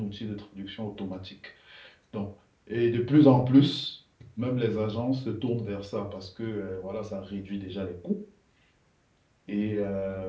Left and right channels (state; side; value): identical; both; correlation 1.00